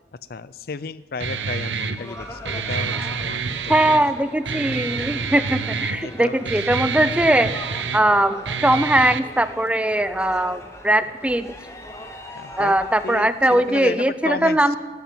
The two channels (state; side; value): normal; both; correlation 0.76